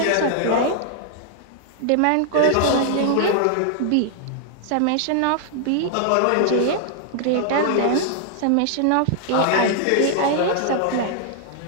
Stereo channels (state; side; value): different; both; correlation 0.00